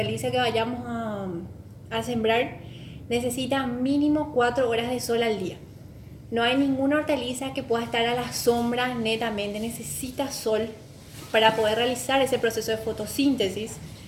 que vayamos a sembrar, necesitan mínimo 4 horas de sol al día. No hay ninguna hortaliza que pueda estar a la sombra netamente, necesita sol para poder realizar ese proceso de fotosíntesis,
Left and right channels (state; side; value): identical; both; correlation 1.00